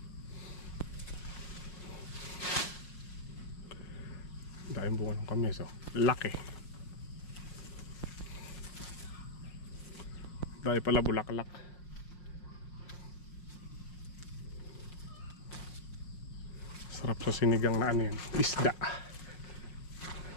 Dahil bunga ng kamyas, oh. Laki. Dahil pala bulaklak. Sarap sa sinigang na ano yan, isda.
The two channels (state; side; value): late; right; 5.6 ms